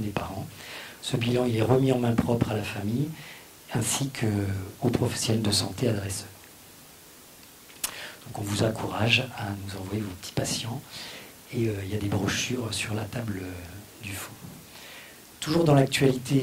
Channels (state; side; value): identical; both; correlation 1.00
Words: des parents. Ce bilan, il est remis en main propre à la famille ainsi qu'aux professionnels de santé adresseurs. Donc on vous encourage à nous envoyer vos petits patients. Et il y a des brochures sur la table du fond. Toujours dans